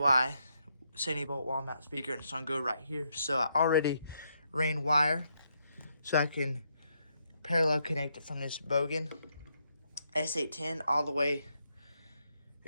70-volt wall mount speaker, and it's going to go right here. So I already ran wire, so I can parallel connect it from this Bogen S810 all the way.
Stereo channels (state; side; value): inverted; both; correlation -0.78